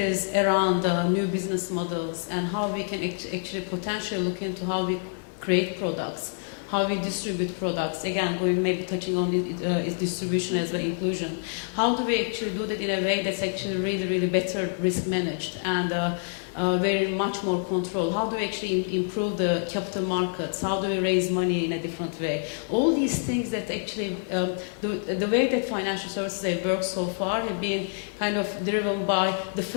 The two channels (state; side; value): silent; right; 60 dB below the other